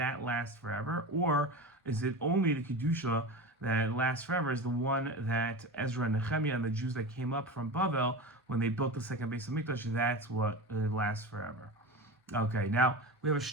last forever, or is it only the kedusha that lasts forever is the one that Ezra and Nehemiah and the Jews that came up from Bavel when they built the second base of Mikdash, that's what lasts forever. Okay, now we have a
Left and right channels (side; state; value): both; normal; correlation 0.27